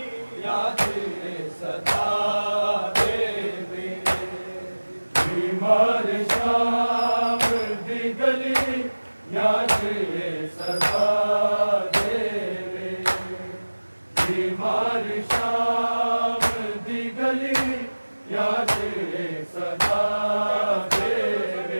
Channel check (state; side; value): inverted; both; correlation -1.00